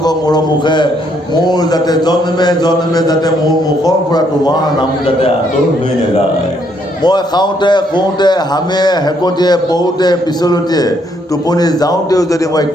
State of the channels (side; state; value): both; normal; correlation 0.71